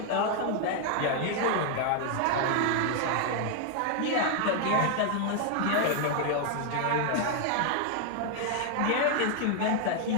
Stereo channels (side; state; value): both; different; correlation 0.00